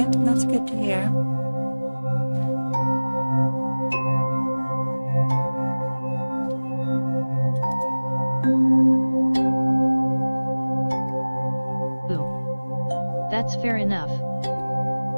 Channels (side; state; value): both; inverted; correlation -1.00